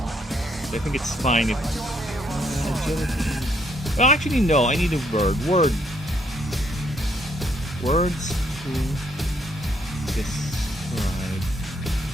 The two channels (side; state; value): both; normal; correlation 0.71